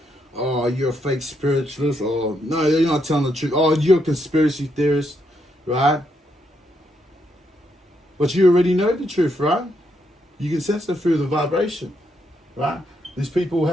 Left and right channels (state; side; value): normal; both; correlation 0.78